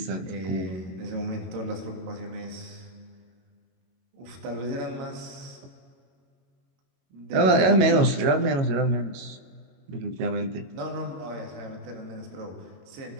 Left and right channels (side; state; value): left; late; 22 ms